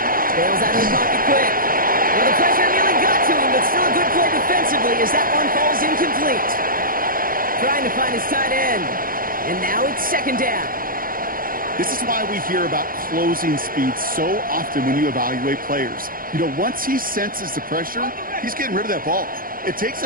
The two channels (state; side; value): late; left; 0.41 ms